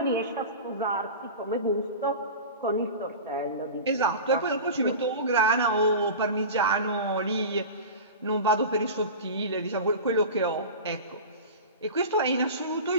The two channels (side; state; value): both; inverted; correlation -0.31